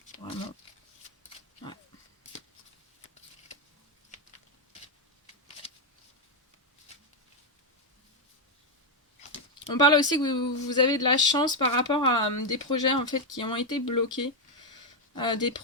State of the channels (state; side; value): normal; both; correlation 0.01